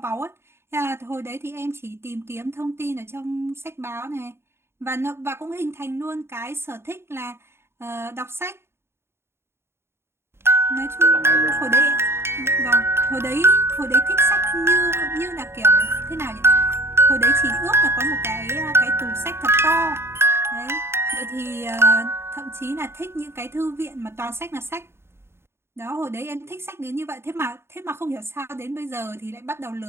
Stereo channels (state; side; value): late; left; 0.12 ms